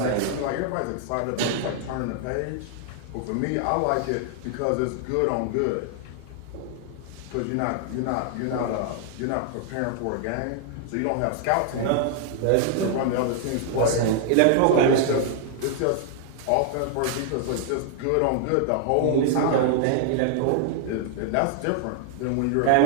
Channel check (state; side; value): different; both; correlation 0.00